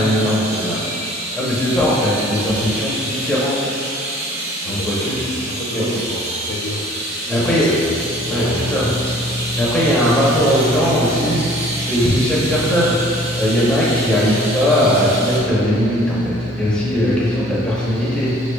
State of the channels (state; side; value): normal; both; correlation 0.53